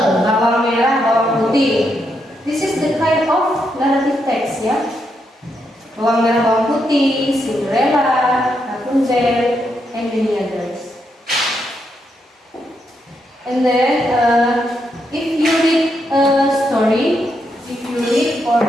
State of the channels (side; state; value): both; normal; correlation 0.80